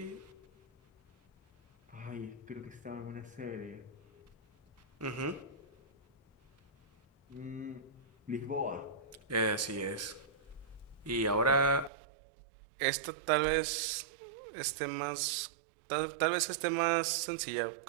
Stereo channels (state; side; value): drops out; left; at 11.9 s